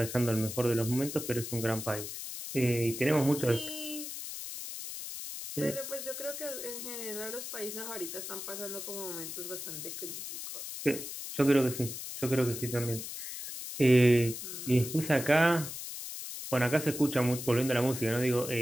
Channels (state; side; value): noise; left; hiss, 8 dB below the sound